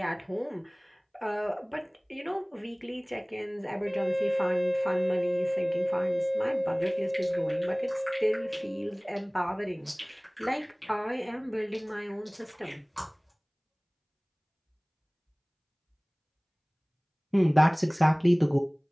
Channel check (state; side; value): identical; both; correlation 1.00